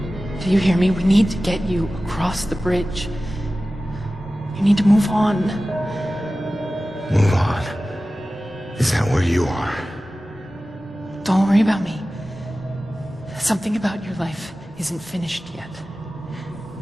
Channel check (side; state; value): both; normal; correlation 0.96